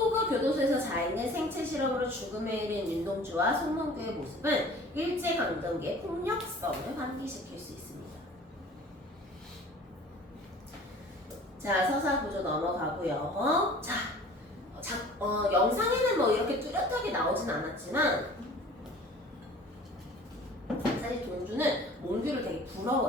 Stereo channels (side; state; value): both; normal; correlation 0.46